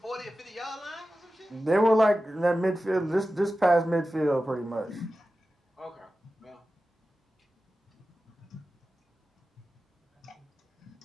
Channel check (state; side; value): normal; both; correlation 0.94